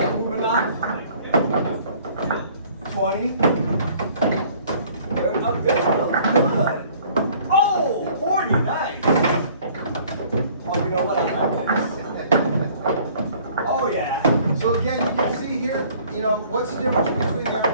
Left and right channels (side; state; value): both; inverted; correlation -0.55